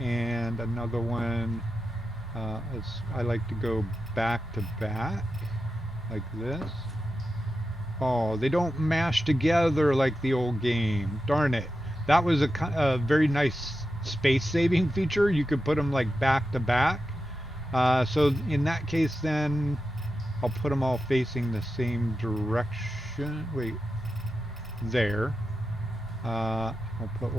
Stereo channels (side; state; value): both; normal; correlation 0.90